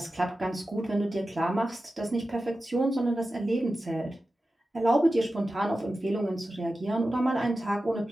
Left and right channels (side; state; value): both; normal; correlation 0.93